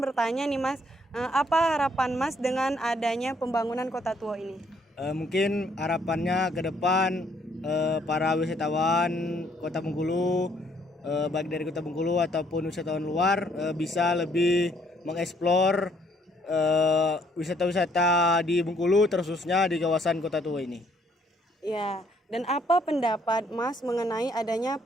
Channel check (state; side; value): normal; both; correlation 0.66